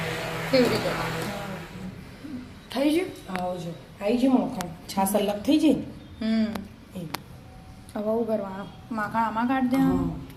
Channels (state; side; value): identical; both; correlation 1.00